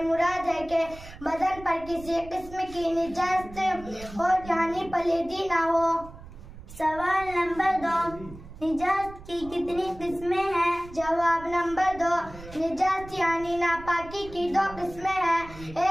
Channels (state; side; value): noise; right; rumble, 16 dB below the sound